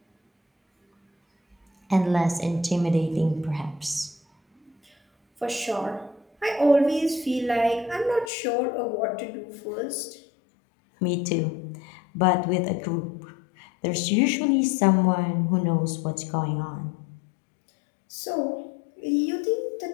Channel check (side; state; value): right; drops out; at 8.3 s